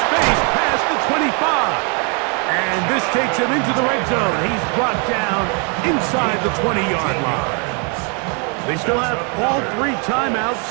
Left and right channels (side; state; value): left; quieter; 36.3 dB